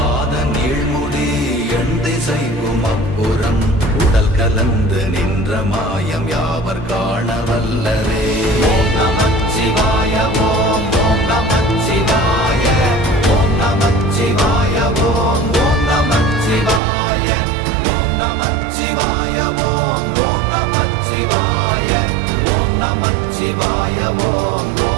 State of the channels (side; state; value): left; drops out; at 16.8 s